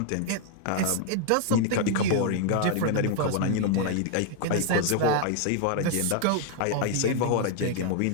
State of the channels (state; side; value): different; both; correlation 0.00